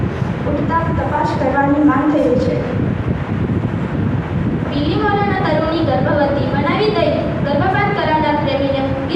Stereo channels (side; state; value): both; identical; correlation 1.00